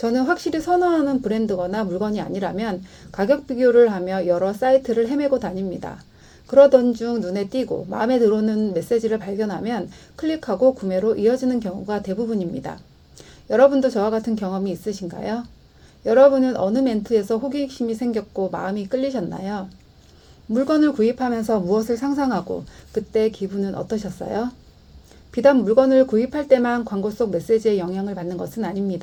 확실히 선호하는 브랜드거나 물건이 아니라면 가격 비교를 하며 여러 사이트를 헤매고 다닙니다. 그러던 중 눈에 띄고 마음에 들어오는 메시지를 발견하면 클릭하고 구매로 이어지는 경우가 대부분입니다. 여러분도 저와 같은 경험이 있으신가요? 여러분은 어느 멘트에서 호기심이 생겼고 마음이 끌리셨나요? 물건을 구입하면서 무엇을 상상하고 그때 기분은 어떠셨어요? 비단 물건을 구입할 때만 광고 속 메시지에 영향을 받는 것은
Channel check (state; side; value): identical; both; correlation 1.00